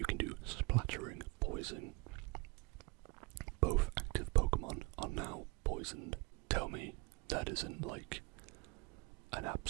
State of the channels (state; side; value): quieter; left; 26.0 dB